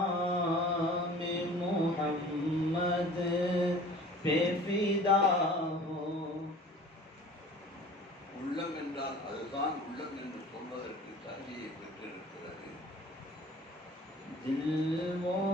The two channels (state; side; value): normal; both; correlation 0.45